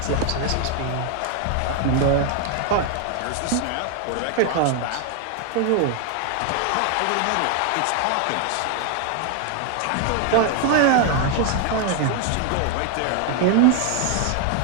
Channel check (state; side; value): different; both; correlation 0.00